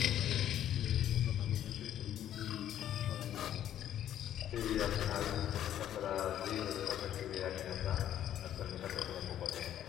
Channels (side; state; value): right; quieter; 11.1 dB